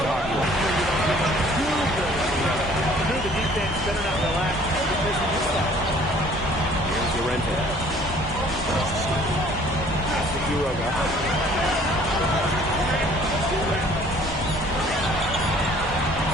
Llorente. Pass to Quiroga.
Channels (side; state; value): both; normal; correlation 0.55